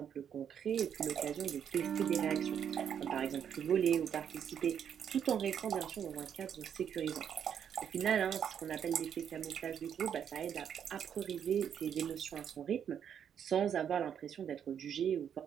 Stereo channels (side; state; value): left; quieter; 8.5 dB